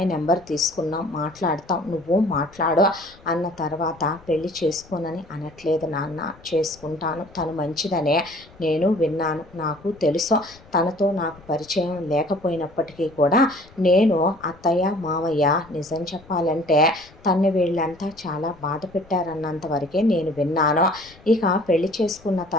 నెంబర్ తీసుకున్నాం, మాట్లాడతాం, నువ్వు మాట్లాడు అన్న తర్వాత పెళ్లి చేసుకోనని అనట్లేదు నాన్న, చేసుకుంటాను. తను మంచిదనే నేను విన్నాను, నాకు తెలుసు. తనతో నాకు పరిచయం లేకపోయినప్పటికీ కూడా నేను అత్తయ్య మావయ్య నిజం చెప్పాలంటే తన్ని వీళ్ళంతా చాలా బాధ పెట్టారన్నంత వరకే నేను విన్నాను. ఇక పెళ్లి చేసుకున్న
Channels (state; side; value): noise; left; rumble, 25 dB below the sound